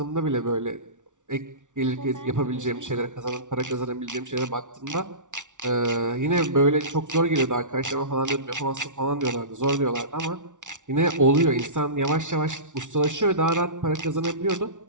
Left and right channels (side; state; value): left; late; 0.87 ms